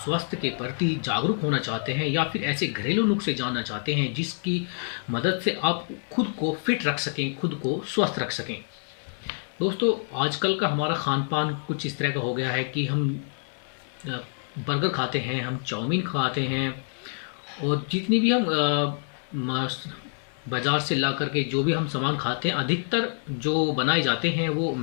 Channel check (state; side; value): silent; right; 60 dB below the other